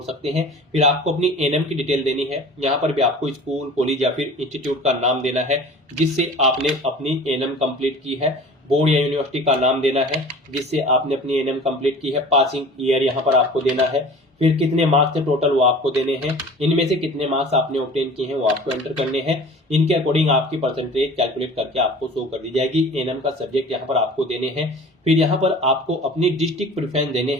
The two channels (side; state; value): both; normal; correlation 0.42